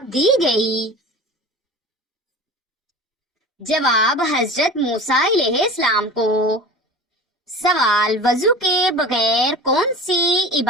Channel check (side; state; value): both; normal; correlation 0.36